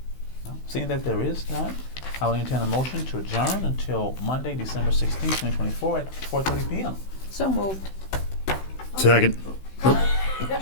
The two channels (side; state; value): right; late; 16 ms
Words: No? Seeing that there is none, I will entertain a motion to adjourn until Monday, December 16th, 2024 at 4:30 p.m. So moved. Second.